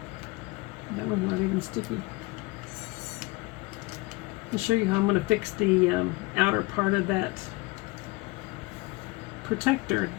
that one's not even sticky. I'll show you how I'm going to fix the outer part of that protector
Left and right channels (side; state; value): right; quieter; 23.9 dB